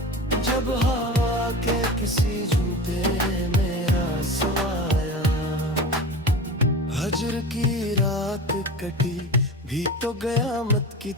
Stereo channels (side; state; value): both; normal; correlation 0.32